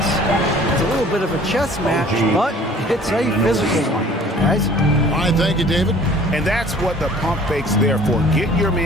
It's a little bit of a chess match, but it's a physical one. Guys? All right, thank you, David. And that's what the pump fake's there for. Get your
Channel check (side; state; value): both; normal; correlation 0.51